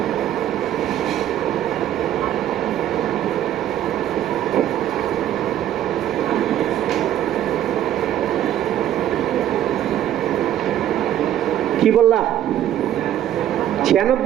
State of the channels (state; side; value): quieter; left; 11.6 dB